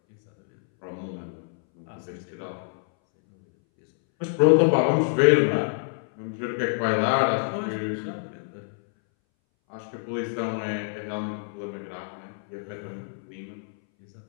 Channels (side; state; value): right; silent; 61 dB below the other